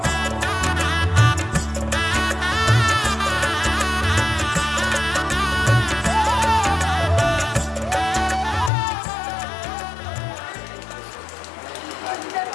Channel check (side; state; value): right; drops out; at 8.7 s